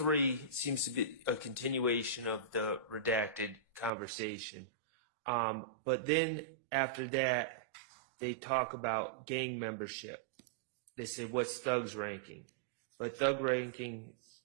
seems to be a continuation of the redacted conversation. But then after that, they talk about gang membership. They say, what's Thug's ranking? But Thug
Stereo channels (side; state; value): left; drops out; at 3.9 s